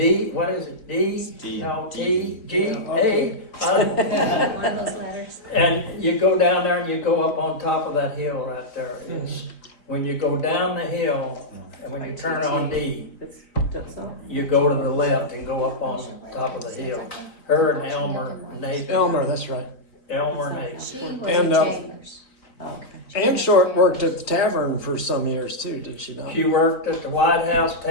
what is it, D. no, T, G, A. One of those letters. And you go down there and you go up on top of that hill right there. It's, when you go down the hill, and when you turn on D, It's just so. you go to the left and go up on top of the hill. Her and Elmer, Nathan. Elmer, that's right. Elmer and Nathan. She was And, in uh, Chambers. Okay. Ann Shortt worked at the tavern for some years too, did she not? She worked at the White House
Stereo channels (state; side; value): late; right; 3.9 ms